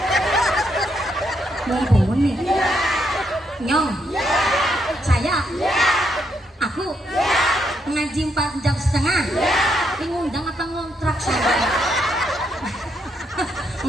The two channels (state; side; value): normal; both; correlation 0.77